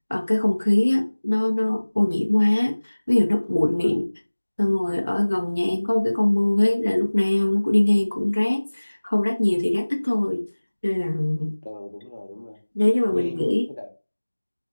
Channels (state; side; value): inverted; both; correlation -1.00